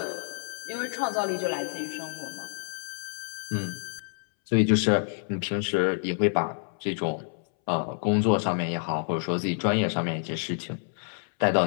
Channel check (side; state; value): right; silent; 59 dB below the other